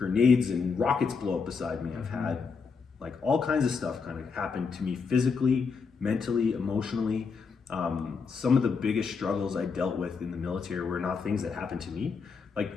and rockets blow up beside me. I've had like all kinds of stuff kind of happen to me physically, mentally, emotionally. Some of the biggest struggles I dealt with in the military were not things that happened to me. Like,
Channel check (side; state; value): right; quieter; 5.2 dB